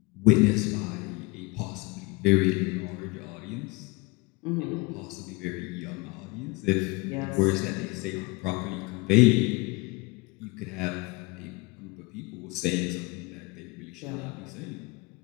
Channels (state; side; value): quieter; right; 26.3 dB